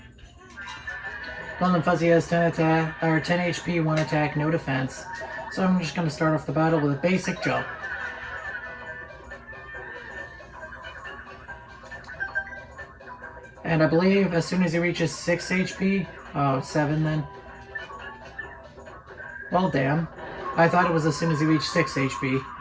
Golden Fuzzy has 10 attack, or 10 HP, 1 attack, no defense. So I'm just going to start off the battle with a basic jump. And I believe as soon as he reaches 6 HP, oh, 7 then. Well, damn. I thought it was as soon as he reached 6 HP,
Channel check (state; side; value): identical; both; correlation 1.00